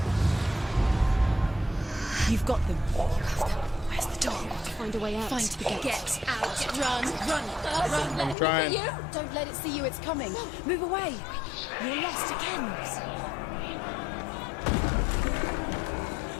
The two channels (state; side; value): drops out; right; at 8.3 s